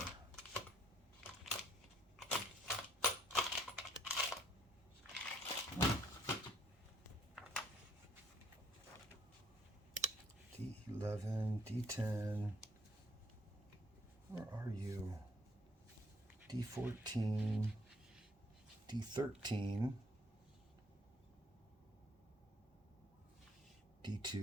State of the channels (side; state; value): both; normal; correlation 0.63